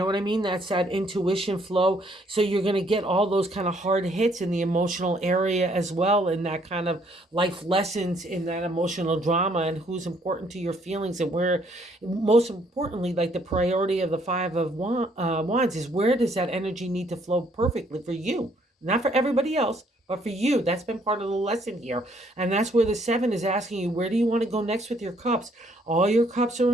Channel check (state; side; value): normal; both; correlation 0.66